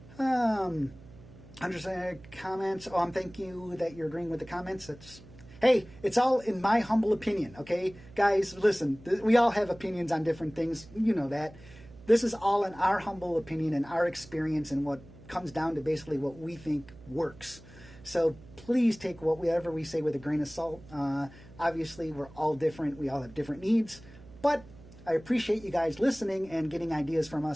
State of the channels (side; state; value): right; noise; hum, 20 dB below the sound